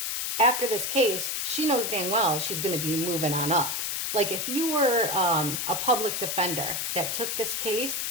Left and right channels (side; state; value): left; noise; hiss, 1 dB below the sound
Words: after this case, she knows dang well she's going to be moving on up. Like if you were a public defender that took this case